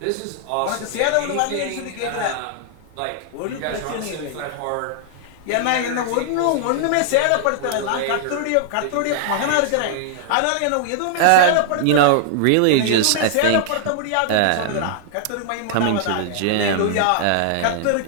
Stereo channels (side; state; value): both; different; correlation -0.01